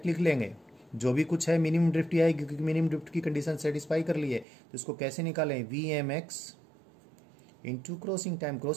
लिख लेंगे जो भी कुछ है, मिनिमम ड्रिफ्ट ही आएगी क्योंकि मिनिमम ड्रिफ्ट की कंडीशन सेटिस्फाई कर ली है। तो इसको कैसे निकालें? VMX into crossing time.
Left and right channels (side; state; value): left; drops out; at 4.5 s